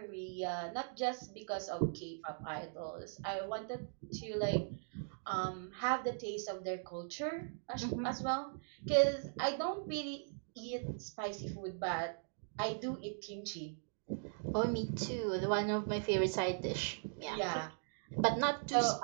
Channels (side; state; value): left; silent; digital silence